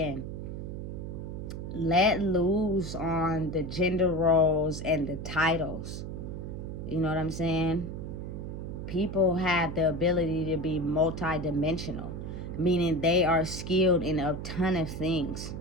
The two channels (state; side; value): noise; right; hum, 7 dB below the sound